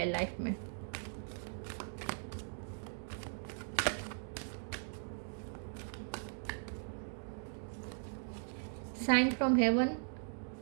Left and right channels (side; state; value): left; silent; digital silence